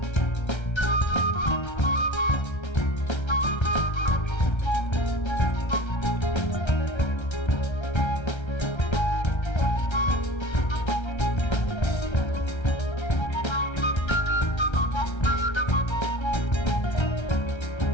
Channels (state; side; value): late; right; 1.3 ms